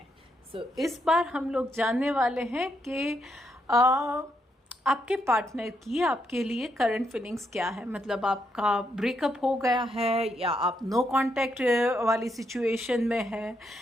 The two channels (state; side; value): normal; both; correlation 0.78